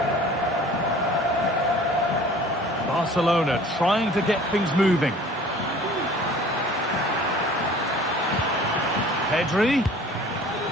Barcelona trying to get things moving. Pedri,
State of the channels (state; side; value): normal; both; correlation 0.48